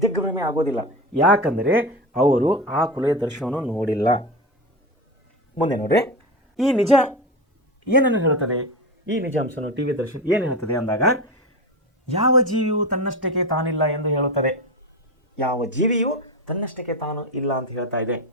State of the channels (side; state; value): both; normal; correlation 0.22